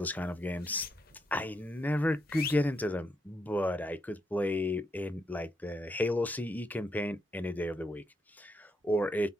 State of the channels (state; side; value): normal; both; correlation 0.79